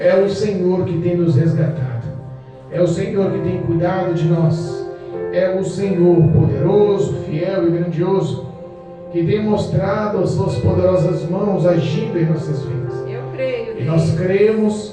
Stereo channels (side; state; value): both; identical; correlation 1.00